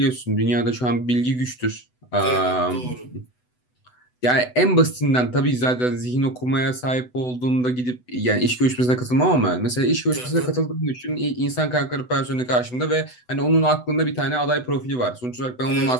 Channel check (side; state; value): right; late; 8.0 ms